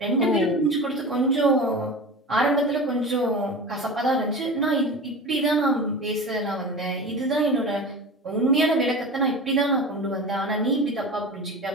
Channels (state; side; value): normal; both; correlation 0.31